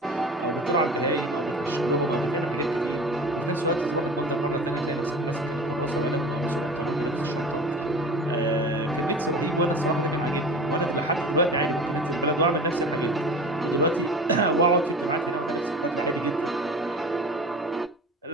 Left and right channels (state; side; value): normal; both; correlation 0.37